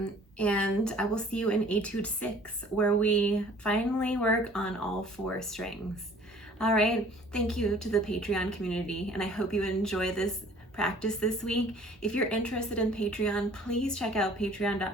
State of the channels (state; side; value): normal; both; correlation 0.52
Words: And I will see you in Etude 6, where we finally work on all 4 strings. All right, thank you to the Patreon community, and I hope you enjoy this practice this week. If you're interested in Patreon, please check out